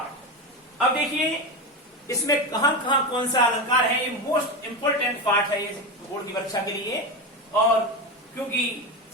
अब देखिए इसमें कहां कहां कौन सा अलंकार है, ये मोस्ट इंपोर्टेंट पार्ट है ये बोर्ड की परीक्षा के लिए। और क्योंकि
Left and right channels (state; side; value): normal; both; correlation 0.17